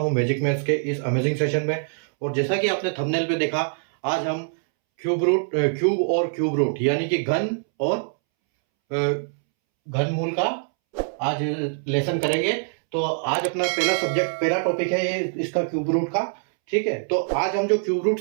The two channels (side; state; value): left; silent; 63 dB below the other